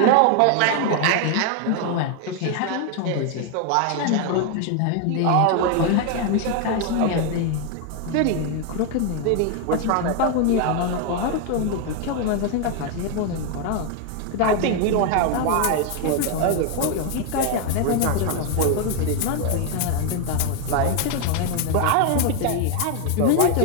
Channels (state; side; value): different; both; correlation 0.01